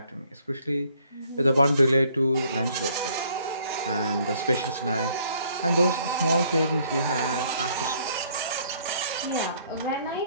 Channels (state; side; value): inverted; both; correlation -0.63